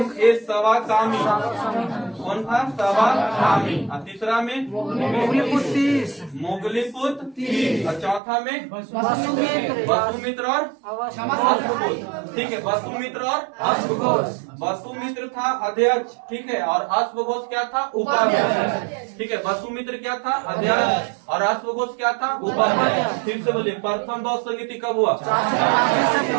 कौन था? सवाकामी। और तीसरा में? मोगलीपुत्र। और चौथा में? वसुमित्र और अश्वघोष। ठीक है, वसुमित्र और अश्वघोष। वसुमित्र था अध्यक्ष। ठीक है, और अश्वघोष क्या था? उपाध्यक्ष। ठीक है, वसुमित्र क्या था? अध्यक्ष। और अश्वघोष क्या था? उपाध्यक्ष। फिर से बोलिए, प्रथम बौद्ध संगीति कब हुआ?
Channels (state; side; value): drops out; left; at 8.2 s